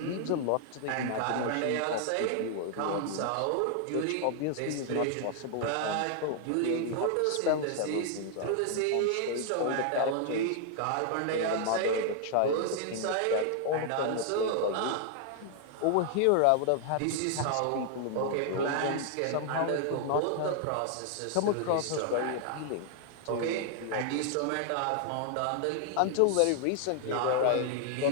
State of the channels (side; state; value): both; different; correlation 0.00